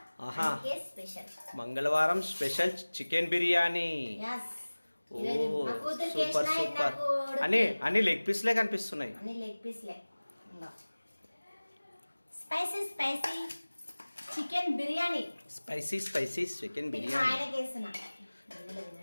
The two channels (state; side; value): inverted; both; correlation -1.00